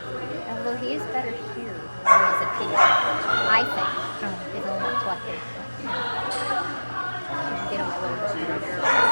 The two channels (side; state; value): both; inverted; correlation -1.00